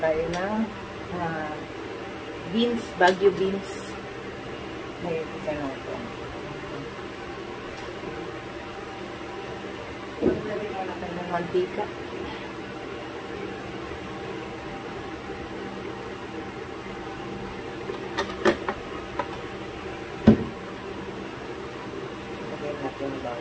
tayo ng beans, Baguio beans. Ngayon isa na ito. Lagyan mo natin ng mantika. Lagyan natin ng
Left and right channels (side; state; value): both; identical; correlation 1.00